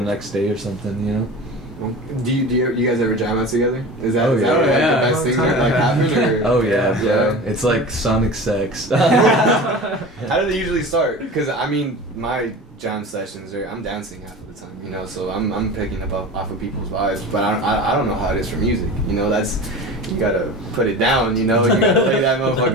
next day or something, you know. Do you guys ever jam out together? Is that, Oh, is yeah. that like Yeah. the best thing that like happened? Or? Oh yeah, bro. It's like sonic sex. How do they usually start? Because I mean, my jam sessions I'm dancing half of the time, you know, so I'm picking up off of people's vibes, but I don't know how it is for music, you know. That's, you gotta put it down, you know. You gotta lay that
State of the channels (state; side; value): normal; both; correlation 0.34